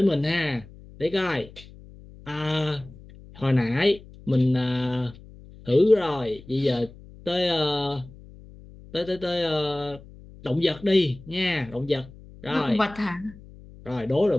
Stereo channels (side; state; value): left; noise; hum, 20 dB below the sound